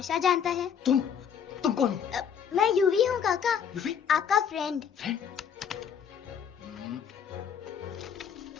जानता है? तुम कौन हो? मैं यूवी हूँ काका, यूवी? आपका फ्रेंड।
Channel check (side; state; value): right; quieter; 7.6 dB